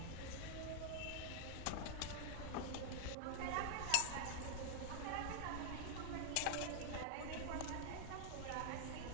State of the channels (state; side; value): different; both; correlation -0.01